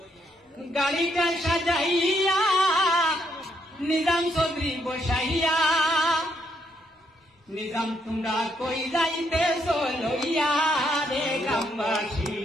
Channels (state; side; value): normal; both; correlation 0.75